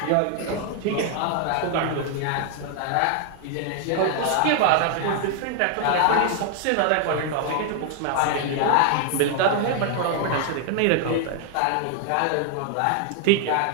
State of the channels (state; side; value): different; both; correlation 0.00